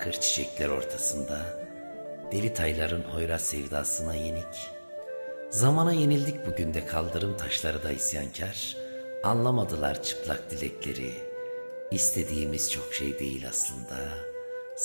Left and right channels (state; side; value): inverted; both; correlation -1.00